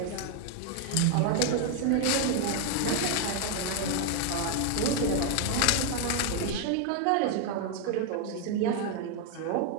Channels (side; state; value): both; different; correlation 0.00